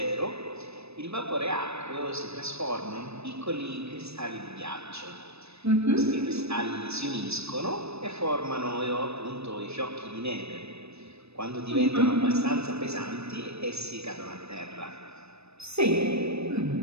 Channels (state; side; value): late; left; 0.79 ms